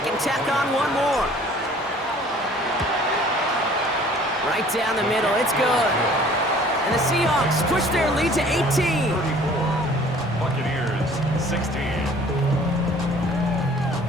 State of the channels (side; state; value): both; normal; correlation 0.52